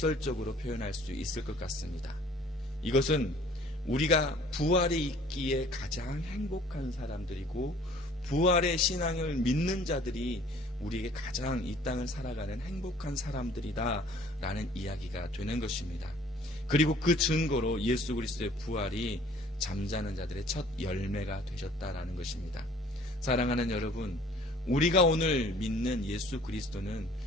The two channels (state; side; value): normal; both; correlation 0.54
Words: 표현할 수 있을 것 같습니다. 이것은 우리가 부활이 있기에 가장 행복한 사람들이고 부활의 신앙을 믿는 자들이 우리에게 가장 이 땅을 살아가는 행복한 사람들이다 라는 이야기가 되는 것입니다. 그리고 그 증거로 예수 그리스도의 부활이 잠자는 자들의 첫 열매가 되셨다라는 것입니다. 사랑하는 여러분, 우리가 오늘 믿는 예수 그리스도는